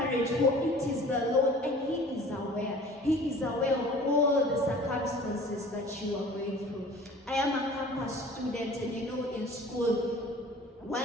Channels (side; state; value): both; normal; correlation 0.46